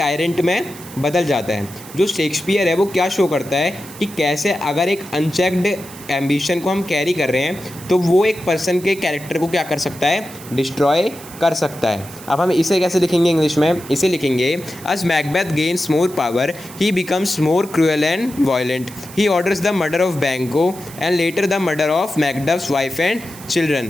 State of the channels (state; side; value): noise; right; hiss, 17 dB below the sound